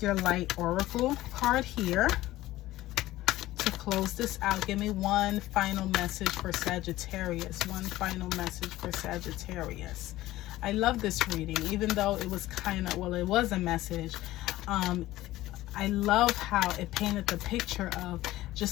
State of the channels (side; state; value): right; quieter; 16.3 dB